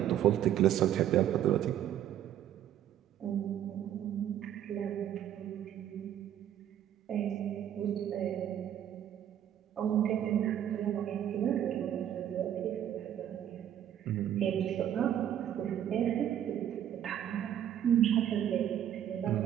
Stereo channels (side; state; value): left; quieter; 10.6 dB